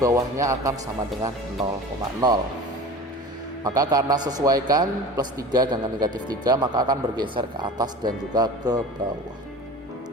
akan sama dengan 0,0. Maka karena sesuaikan plus 3 dengan negatif 3, maka akan bergeser ke atas dan juga ke bawah.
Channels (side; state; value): both; normal; correlation 0.37